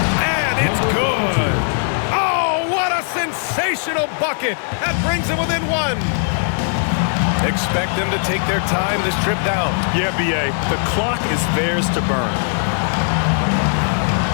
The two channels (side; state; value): right; silent; digital silence